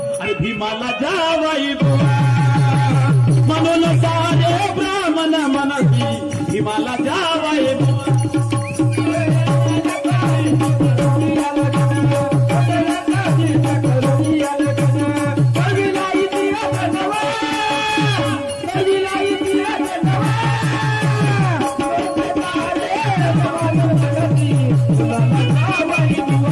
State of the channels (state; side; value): identical; both; correlation 1.00